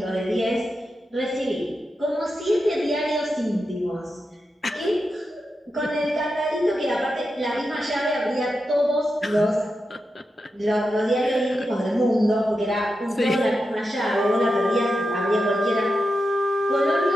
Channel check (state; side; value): normal; both; correlation 0.89